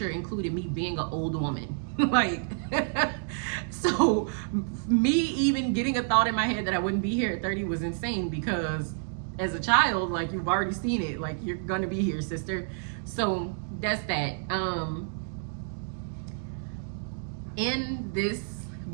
included me being an old woman. Like, so me even getting a thought in my head that I wouldn't be here at 30 was insane, because as a child, like, you've already seen it, like, you're gonna be here, sister. So that's that. In this,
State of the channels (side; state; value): left; silent; digital silence